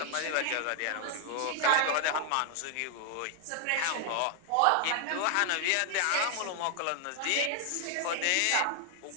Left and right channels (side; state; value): both; different; correlation 0.00